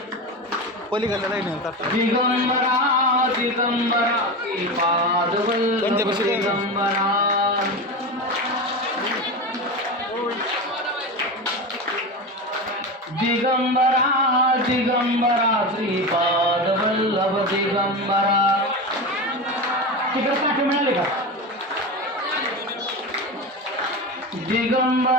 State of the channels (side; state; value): both; normal; correlation 0.22